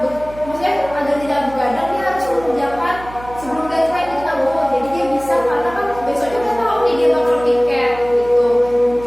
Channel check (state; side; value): noise; right; hum, 17 dB below the sound